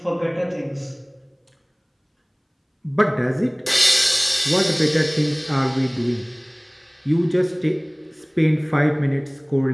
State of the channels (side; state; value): both; identical; correlation 1.00